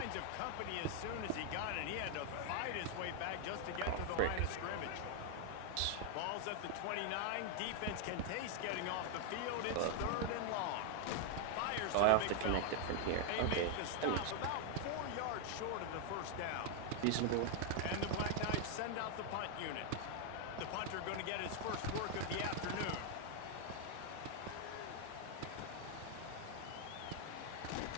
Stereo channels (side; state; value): both; different; correlation 0.00